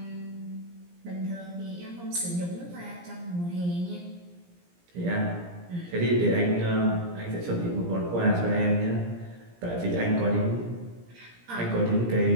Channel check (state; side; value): late; left; 17 ms